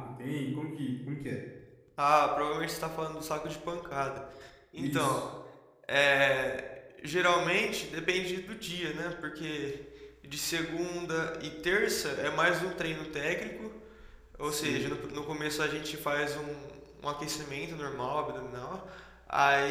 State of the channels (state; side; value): identical; both; correlation 1.00